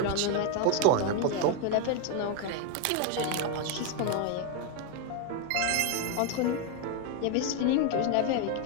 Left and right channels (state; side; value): different; both; correlation 0.01